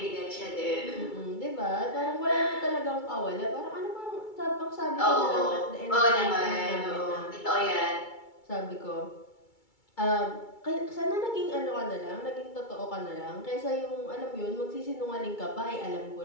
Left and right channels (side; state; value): right; late; 2.3 ms